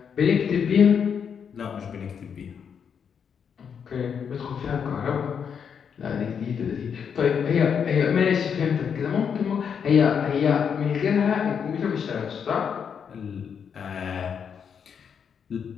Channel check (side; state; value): right; quieter; 7.2 dB